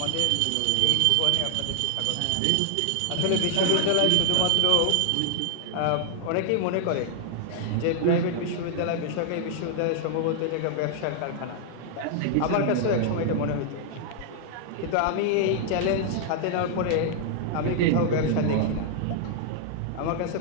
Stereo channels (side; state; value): both; different; correlation 0.00